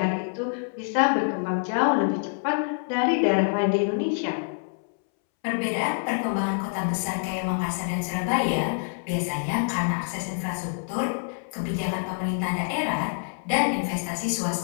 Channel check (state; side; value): silent; right; 61 dB below the other